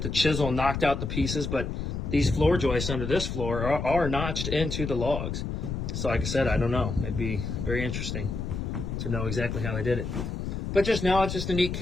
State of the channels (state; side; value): noise; left; rumble, 4 dB below the sound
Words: the chisel and knocked out the pieces. But these floor joists under this floor are notched into the logs. So like I said, I don't know. It'd be very interesting to know exactly how they did it. But just now, it's just a neat